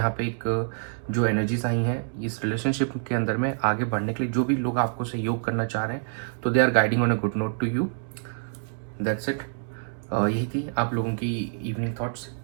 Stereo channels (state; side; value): silent; left; 60 dB below the other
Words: पे एक जो एनर्जीज आई हैं इस रिलेशनशिप के अंदर में आगे बढ़ने के लिए, जो भी लोग आपको सहयोग करना चाह रहे हैं, तो they are guiding on a good note to you. That's it. यही थी आप लोगों की evening thoughts.